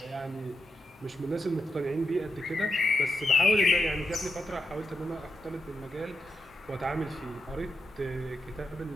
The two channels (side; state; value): both; normal; correlation 0.85